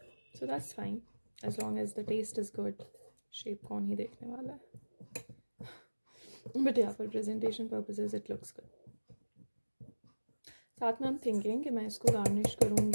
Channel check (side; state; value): both; inverted; correlation -1.00